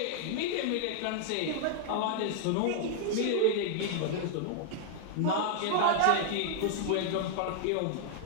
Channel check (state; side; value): different; both; correlation -0.01